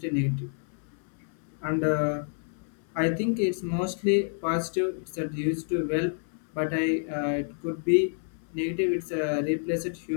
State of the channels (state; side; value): silent; right; 59 dB below the other